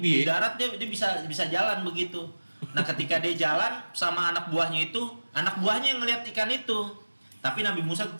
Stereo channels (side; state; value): both; inverted; correlation -1.00